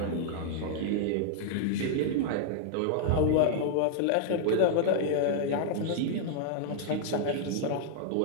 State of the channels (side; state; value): both; different; correlation -0.01